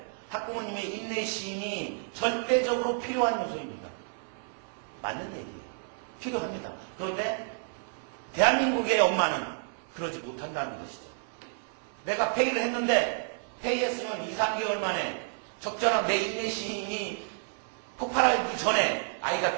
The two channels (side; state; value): left; silent; 56 dB below the other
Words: 학부모님의 인내심이 절대적으로 필요한 요소입니다. 맞는 얘기예요. 필요합니다. 그런데 대한민국의 엄마는 그러지 못한다는 것이죠. 내가 페이를 했는데 페이했으면 2, 3개월 만에 적절한 내 인내심이 폭발하기 전에 아이가